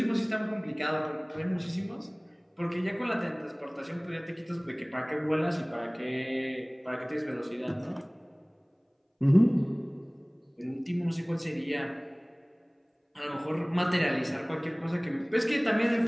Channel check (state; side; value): identical; both; correlation 1.00